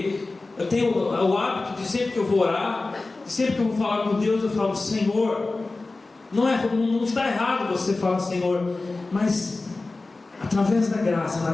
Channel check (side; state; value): right; quieter; 3.4 dB